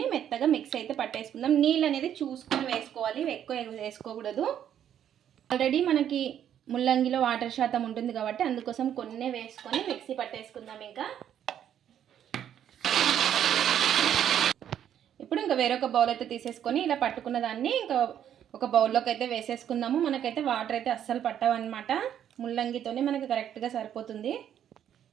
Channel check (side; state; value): left; quieter; 9.9 dB